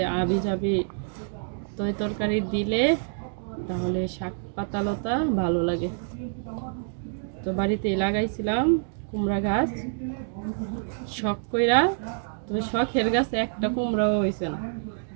আবি যাবি তৈ তরকারি দিলে তাহলে শাক পাতালতা ভালো লাগে। তো বাড়িতেই লাগাইছিলাম কুমড়া গাছ, শখ কইরা। তবে শখের গাছে একটা কুমড়াও হয়েছে না,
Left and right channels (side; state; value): left; silent; digital silence